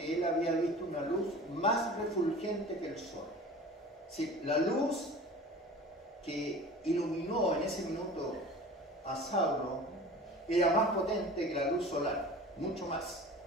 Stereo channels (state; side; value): normal; both; correlation 0.40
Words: él había visto una luz más refulgente que el sol. Sí, la luz que iluminó en ese minuto a Saulo era más potente que la luz solar, mucho más.